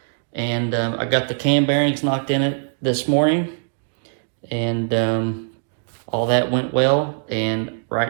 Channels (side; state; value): left; silent; digital silence